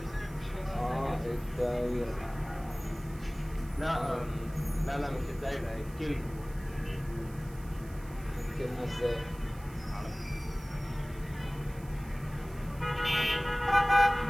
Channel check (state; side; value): noise; right; hiss, 22 dB below the sound